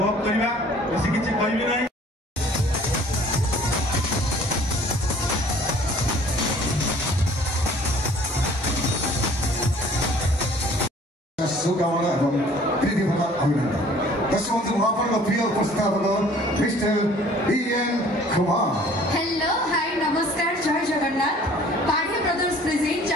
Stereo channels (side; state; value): both; normal; correlation 0.53